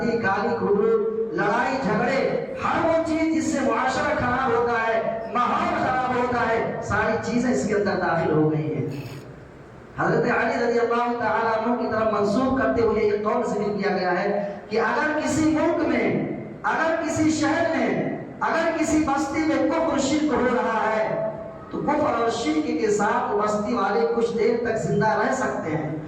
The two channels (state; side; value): identical; both; correlation 1.00